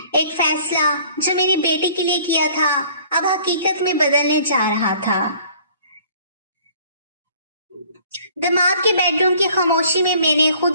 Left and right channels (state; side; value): inverted; both; correlation -0.55